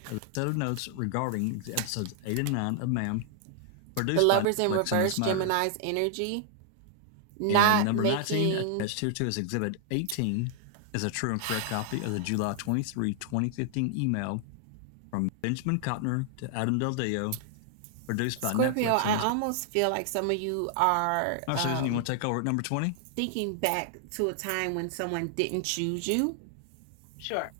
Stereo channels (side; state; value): both; different; correlation 0.00